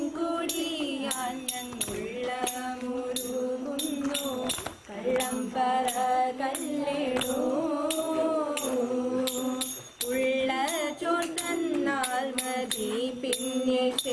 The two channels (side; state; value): both; identical; correlation 1.00